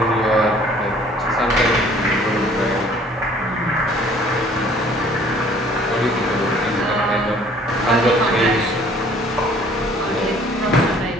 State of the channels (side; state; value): both; normal; correlation 0.56